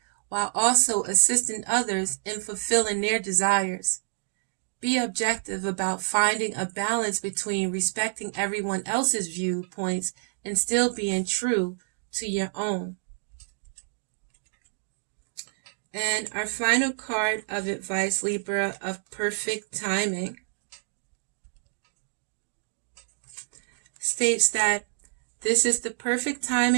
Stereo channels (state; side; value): silent; left; digital silence